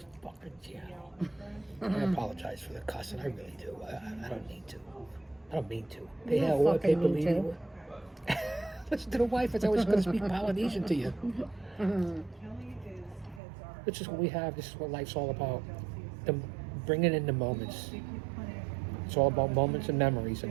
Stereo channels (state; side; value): drops out; left; at 13.4 s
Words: fucking channel. I apologize for the cussing, I really do. I don't need to. I don't mean to. Hey, You hell, don't what, fucking need people Listen to the wife, it's always going to speak Polynesian to you. This is what we have, this is what life's all about. Bringing in the moments. It's all about moments and memories, and